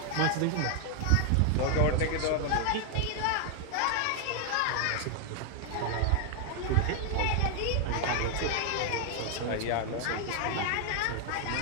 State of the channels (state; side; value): different; both; correlation 0.00